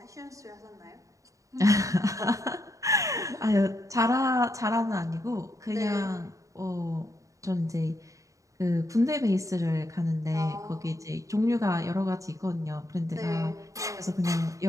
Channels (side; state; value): left; late; 0.16 ms